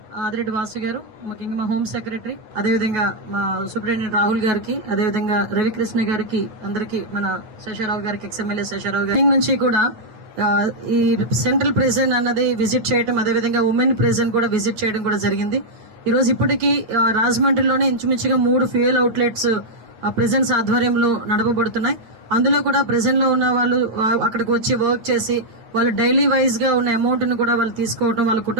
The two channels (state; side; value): late; left; 9.3 ms